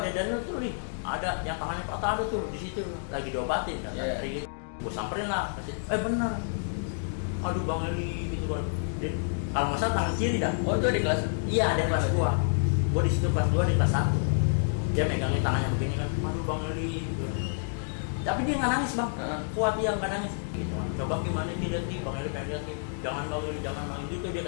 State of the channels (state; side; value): silent; right; digital silence